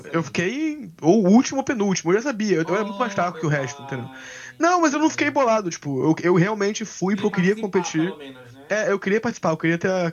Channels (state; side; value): identical; both; correlation 1.00